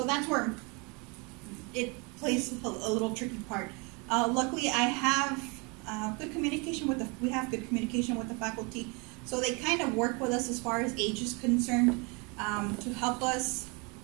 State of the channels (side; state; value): left; quieter; 30.5 dB